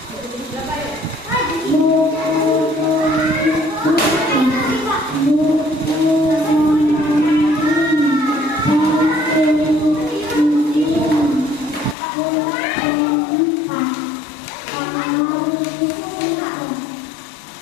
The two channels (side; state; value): right; drops out; at 12.0 s